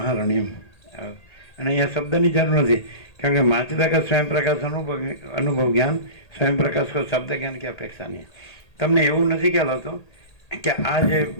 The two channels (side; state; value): right; late; 1.8 ms